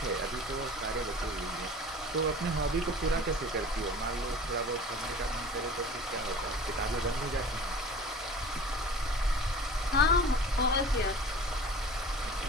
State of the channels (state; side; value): normal; both; correlation 0.41